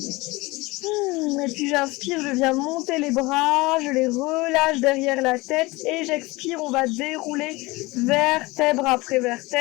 Et puis j'inspire, je viens monter les bras, je les relâche derrière la tête et j'expire, on va dérouler vertèbre après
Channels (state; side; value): quieter; right; 22.3 dB